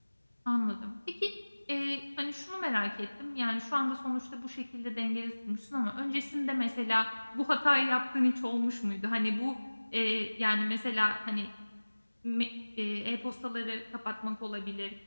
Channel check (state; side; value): inverted; both; correlation -1.00